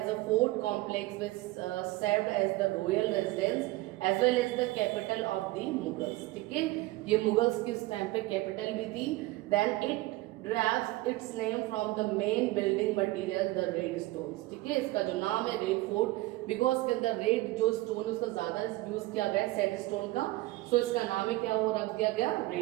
a fort complex which served as the royal residence as well as the capital of the Mughals. ठीक है, ये Mughals किस time पे capital भी थी. Then it derives its name from the main building material, the red stones. ठीक है, इसका जो नाम है रेड फोर्ट, बिकॉज के अंदर रेड जो स्टोन है उसका ज्यादा यूज किया गया है सैंड स्टोन का, सो इसका नाम है क्या हो रख दिया गया,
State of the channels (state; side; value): quieter; left; 19.1 dB